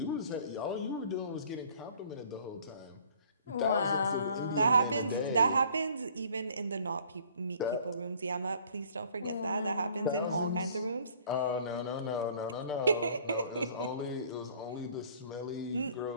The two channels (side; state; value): both; inverted; correlation -0.55